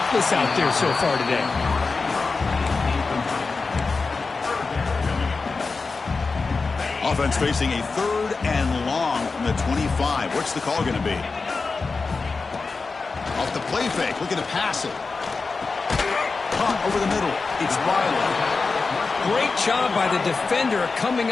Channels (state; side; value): quieter; right; 4.2 dB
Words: out there so far today. Offense facing a third and long from the 25. What's the call going to be? Off the play fake, looking to pass it. Caught over the middle. It's Byler. Great job by the defender coming